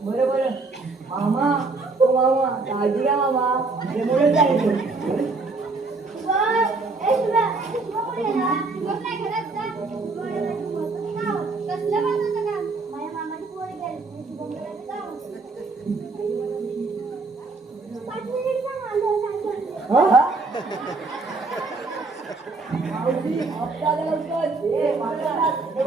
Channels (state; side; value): quieter; left; 3.7 dB